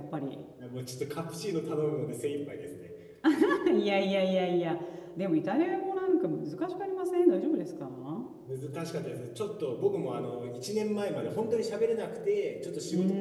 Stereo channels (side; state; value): both; identical; correlation 1.00